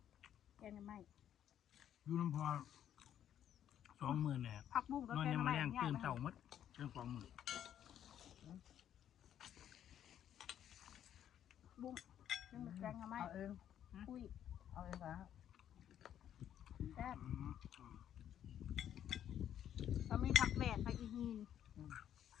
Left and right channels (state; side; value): quieter; right; 10.3 dB